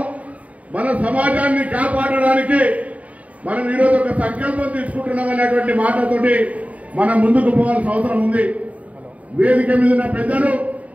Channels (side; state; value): left; late; 0.068 ms